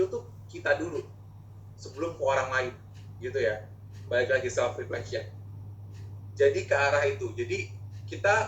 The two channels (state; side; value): identical; both; correlation 1.00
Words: tuh kita dulu sebelum ke orang lain gitu ya. Balik lagi self reflection. Jadi ke arah itu. Jadi